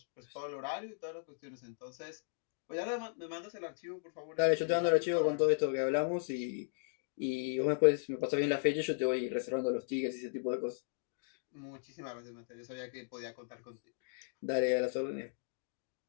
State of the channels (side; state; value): right; silent; digital silence